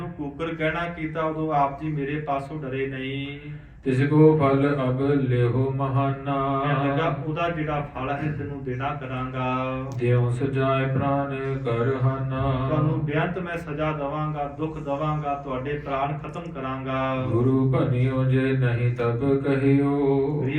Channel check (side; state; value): both; identical; correlation 1.00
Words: ਕੂਕਰ ਕਹਿਣਾ ਕੀਤਾ, ਉਦੋਂ ਆਪ ਜੀ ਮੇਰੇ ਪਾਸੋਂ ਡਰੇ ਨਹੀਂ। तिसको फल अब लेहो महाना ਕਹਿਣ ਲੱਗਾ, ਉਹਦਾ ਜਿਹੜਾ ਫਲ ਹੈ ਤੈਨੂੰ ਦੇਣਾ ਕਰਾਂਗਾ, देव सजाए प्राण कर हाना ਤੁਹਾਨੂੰ ਬੇਅੰਤ ਮੈਂ ਸਜ਼ਾ ਦਵਾਂਗਾ, ਦੁੱਖ ਦਵਾਂਗਾ, ਤੁਹਾਡੇ ਪ੍ਰਾਣ ਖਤਮ ਕਰਾਂਗਾ। गुरु बनियो जे नहीं तब कहियो